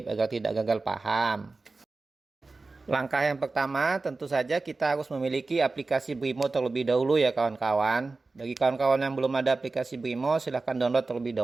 agar tidak gagal paham. Langkah yang pertama, tentu saja kita harus memiliki aplikasi Brimo terlebih dahulu ya kawan-kawan. Bagi kawan-kawan yang belum ada aplikasi Brimo, silahkan download terlebih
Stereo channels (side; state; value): left; quieter; 3.6 dB